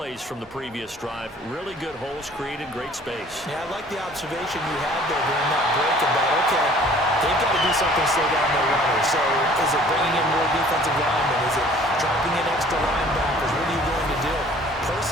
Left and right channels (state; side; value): normal; both; correlation 0.52